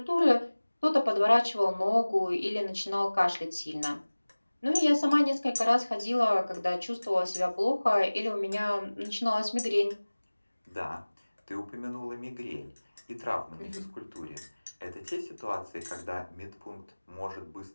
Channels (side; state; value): both; inverted; correlation -1.00